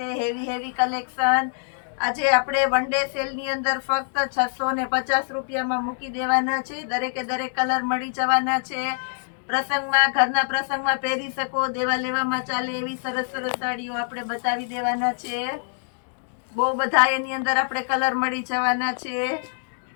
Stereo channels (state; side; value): silent; right; 57 dB below the other